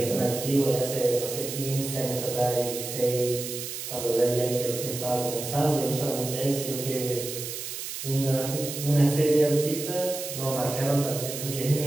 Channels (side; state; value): right; noise; hiss, 7 dB below the sound